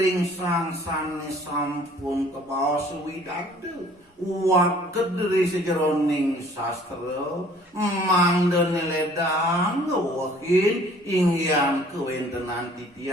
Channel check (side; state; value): both; normal; correlation 0.54